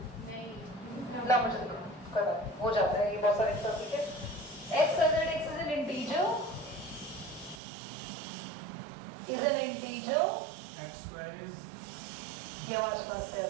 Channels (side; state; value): left; drops out; at 7.6 s